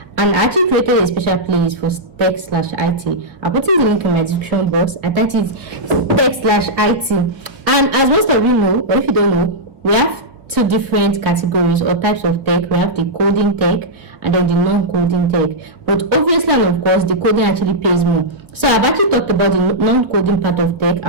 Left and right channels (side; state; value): left; late; 1.5 ms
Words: and I actually created a special playlist for tech/IT. I'll put in the link in my description box. I typed it tech/IT, and as most of you know, or if you don't know, we have two different categories or types of tech. We have the coding tech and then the non-coding tech, but obviously and of course the coding actually pays more. So I've actually talked about the non-coding part of tech.